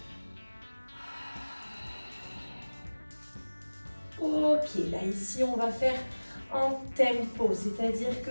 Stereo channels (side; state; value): both; inverted; correlation -1.00